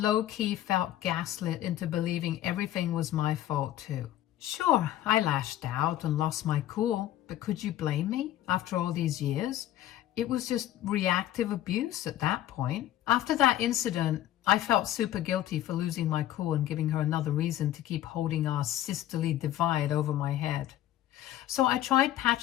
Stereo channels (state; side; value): quieter; right; 13.2 dB